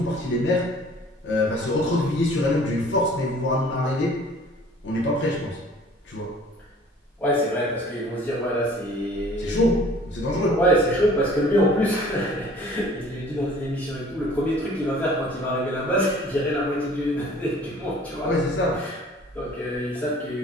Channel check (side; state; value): both; normal; correlation 0.51